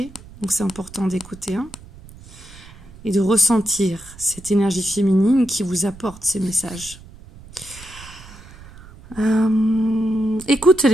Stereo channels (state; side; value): noise; right; rumble, 19 dB below the sound